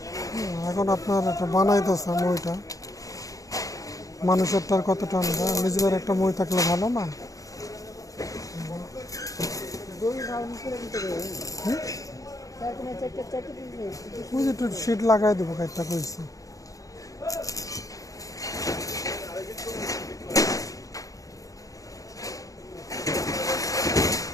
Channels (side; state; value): right; late; 0.17 ms